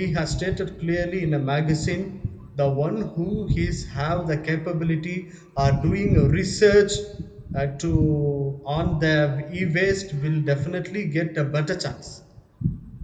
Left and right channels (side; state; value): both; identical; correlation 1.00